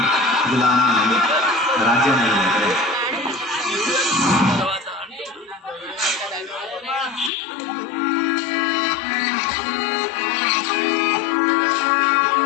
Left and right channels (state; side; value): drops out; right; at 7.3 s